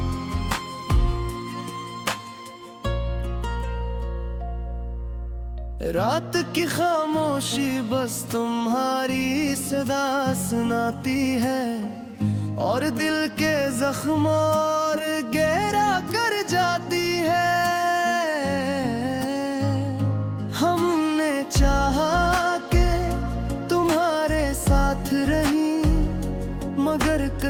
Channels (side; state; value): both; identical; correlation 1.00